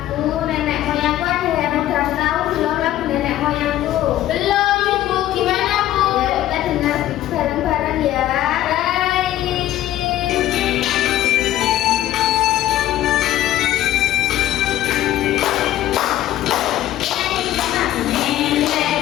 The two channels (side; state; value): right; quieter; 13.5 dB